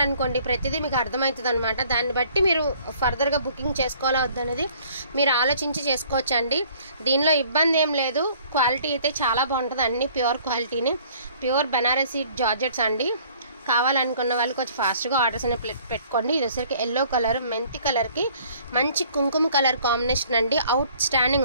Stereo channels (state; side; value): inverted; both; correlation -0.56